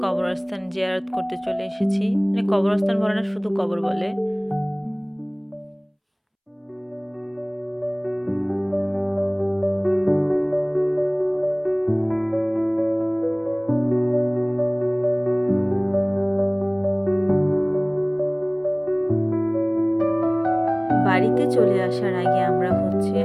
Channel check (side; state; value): both; identical; correlation 1.00